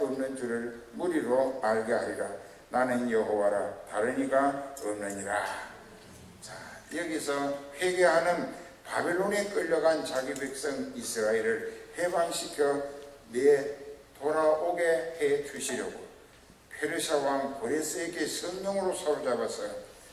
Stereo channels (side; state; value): both; identical; correlation 1.00